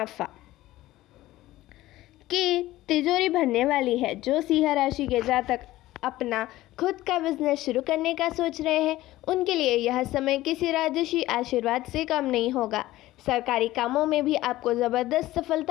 की तिजोरी भरने वाली है। जो सिंह राशि के जातक अपना खुद का बिजनेस शुरू करने का सोच रहे हैं उनके लिए यह समय किसी राजसी आशीर्वाद से कम नहीं होगा। सरकारी कामों में भी आपको ज़बरदस्त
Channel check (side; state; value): right; quieter; 16.4 dB